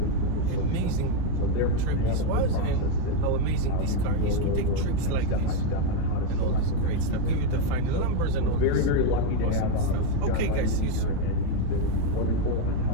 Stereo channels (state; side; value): different; both; correlation 0.02